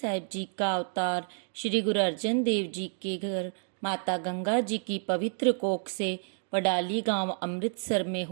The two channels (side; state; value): left; silent; digital silence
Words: जी का अवतार श्री गुरु अर्जन देव जी के घर माता गंगा जी की पवित्र कोख से वडाली गांव अमृतसर में